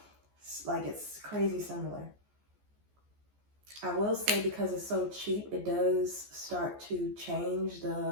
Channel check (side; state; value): left; late; 14 ms